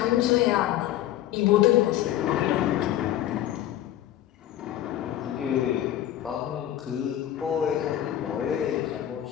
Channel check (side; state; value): right; quieter; 12.4 dB